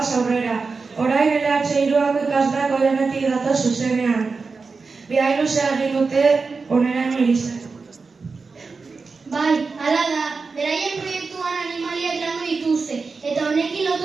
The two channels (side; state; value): left; quieter; 4.5 dB